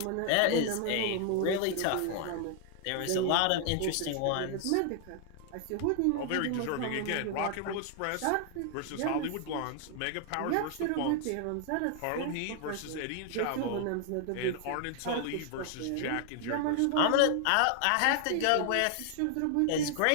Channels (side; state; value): both; different; correlation 0.00